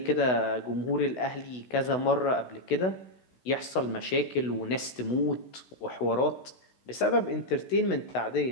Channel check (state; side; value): late; right; 16 ms